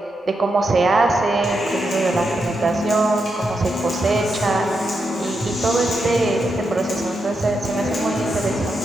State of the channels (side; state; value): both; normal; correlation 0.84